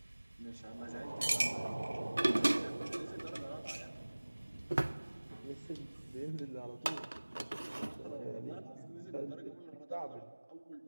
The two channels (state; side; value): inverted; both; correlation -1.00